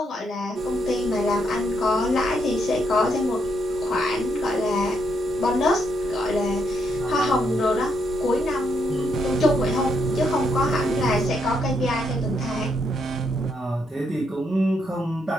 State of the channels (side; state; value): both; normal; correlation 0.77